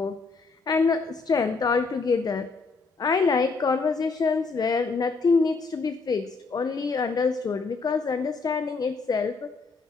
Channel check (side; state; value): right; quieter; 4.3 dB